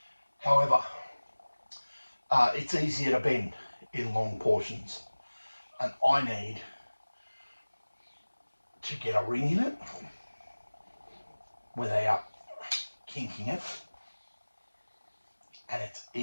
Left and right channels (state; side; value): inverted; both; correlation -1.00